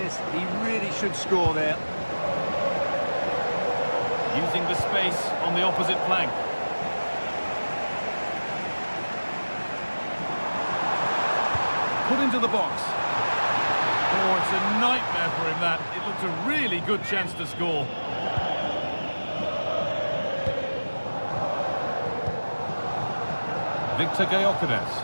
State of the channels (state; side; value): inverted; both; correlation -1.00